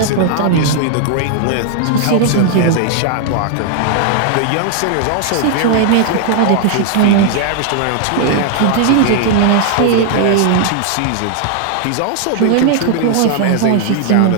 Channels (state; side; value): different; both; correlation 0.00